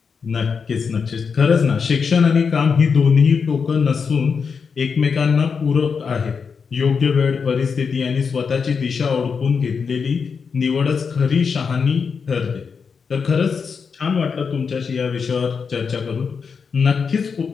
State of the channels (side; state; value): right; quieter; 5.8 dB